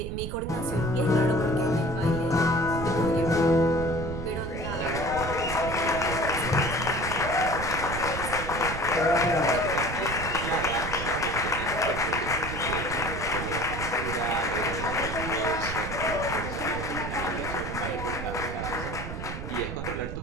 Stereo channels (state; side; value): noise; right; rumble, 7 dB below the sound